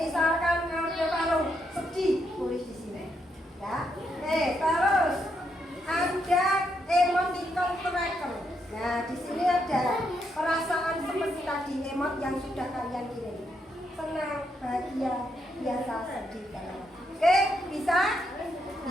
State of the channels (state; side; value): normal; both; correlation 0.79